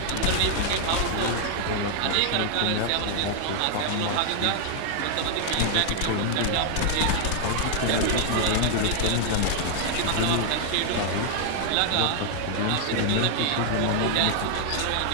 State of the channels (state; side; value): different; both; correlation 0.00